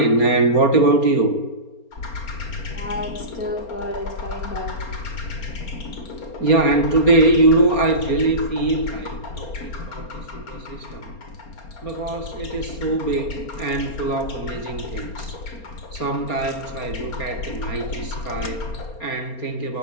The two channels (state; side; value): late; right; 4.3 ms